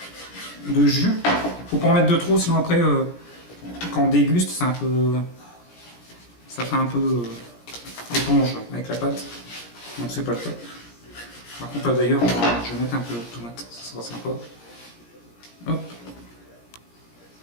de jus. Faut pas en mettre de trop, sinon après quand on déguste, c'est un peu, ça fait un peu éponge avec la pâte. Donc c'est pas le top. Par contre là d'ailleurs, je vais mettre un peu de tomate, ça sera sympa. Hop.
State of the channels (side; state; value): right; late; 17 ms